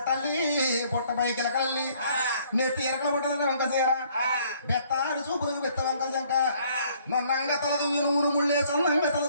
బొట్ట పైకిలకల్లి నెత్తి ఎరకల బొట్టల వంక చీర బెత్తారు చూపులకు బెత్త వంకల జంక నన్నంగా తలదువి నూరు ముళ్ళేసి అన్నంగా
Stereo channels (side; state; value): both; inverted; correlation -0.62